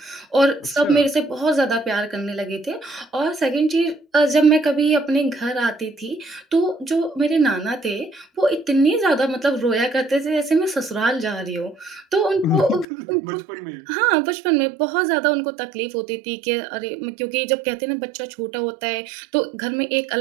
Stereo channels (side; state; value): left; drops out; at 12.9 s